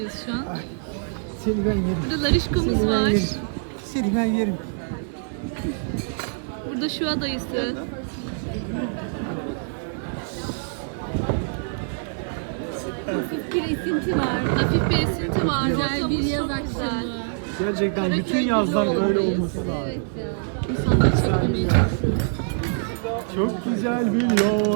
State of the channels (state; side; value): silent; left; digital silence